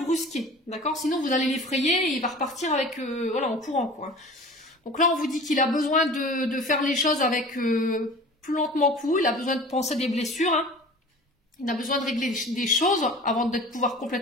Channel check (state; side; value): normal; both; correlation 0.41